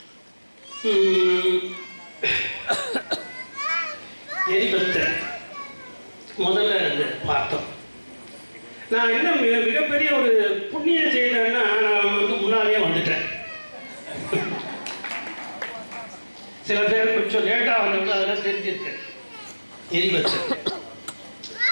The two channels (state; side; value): inverted; both; correlation -1.00